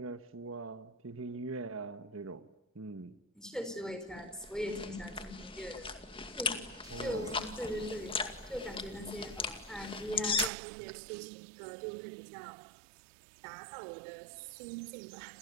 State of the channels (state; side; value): drops out; left; at 10.5 s